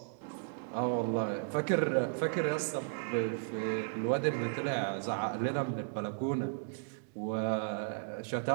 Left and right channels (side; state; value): left; silent; digital silence